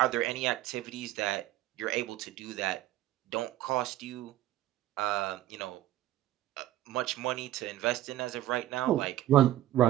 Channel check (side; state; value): left; quieter; 14.1 dB